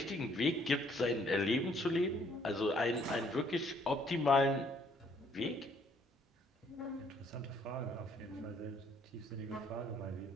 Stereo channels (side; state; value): both; normal; correlation 0.64